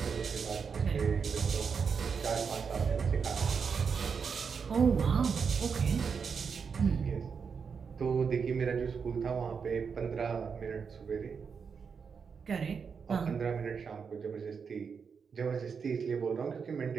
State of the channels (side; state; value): left; quieter; 6.0 dB